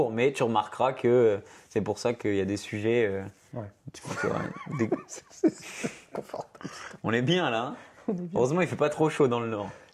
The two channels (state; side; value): identical; both; correlation 1.00